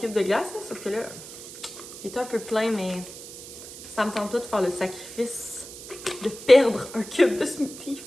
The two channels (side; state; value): right; noise; hiss, 13 dB below the sound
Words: de glace, là, sauf que là, il est un peu plein, mais ça me tente pas de faire le sacrifice de perdre un cube de smoothie.